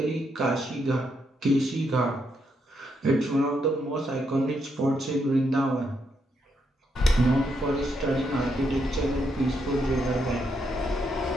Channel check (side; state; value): both; normal; correlation 0.78